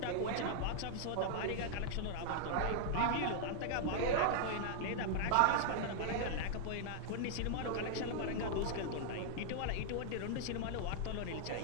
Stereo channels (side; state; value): both; different; correlation -0.01